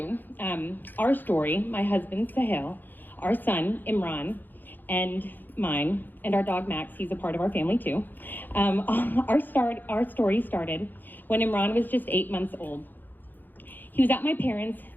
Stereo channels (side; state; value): right; late; 0.089 ms